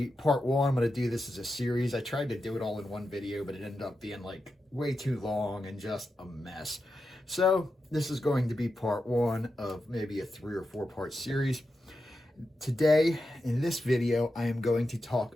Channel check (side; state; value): both; normal; correlation 0.89